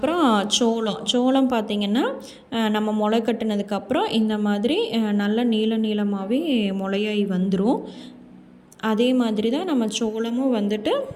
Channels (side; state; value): both; identical; correlation 1.00